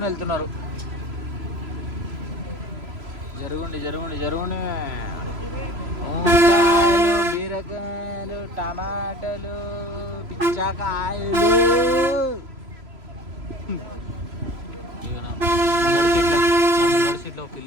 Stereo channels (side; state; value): left; late; 3.0 ms